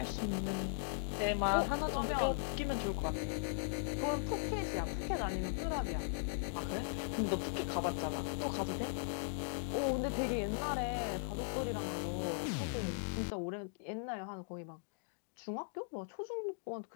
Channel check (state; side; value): silent; right; digital silence